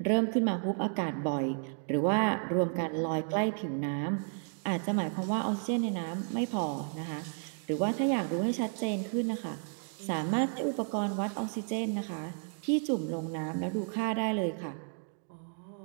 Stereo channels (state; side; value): silent; left; 56 dB below the other